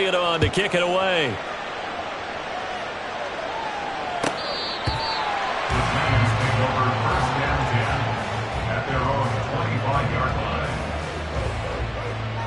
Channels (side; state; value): both; identical; correlation 1.00